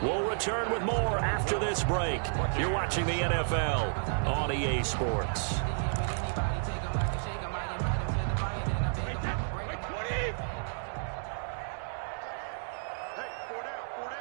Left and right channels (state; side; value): silent; left; digital silence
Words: We'll return with more after this break. You're watching the NFL on EA Sports.